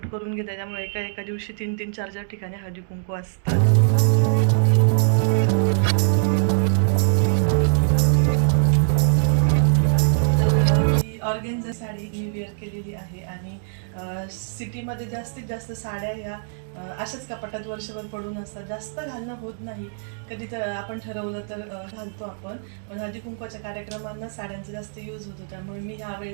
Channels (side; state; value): left; silent; digital silence